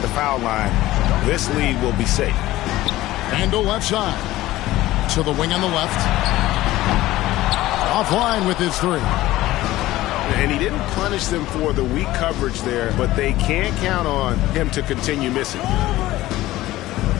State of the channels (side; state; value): right; quieter; 16.5 dB